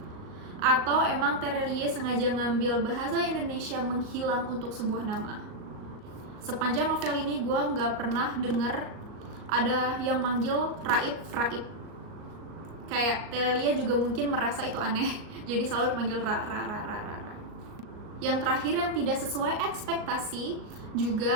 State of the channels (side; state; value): left; late; 38 ms